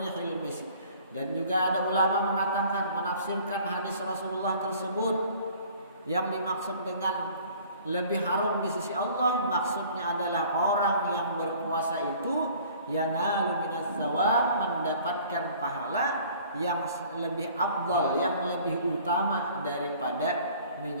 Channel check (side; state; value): both; inverted; correlation -0.52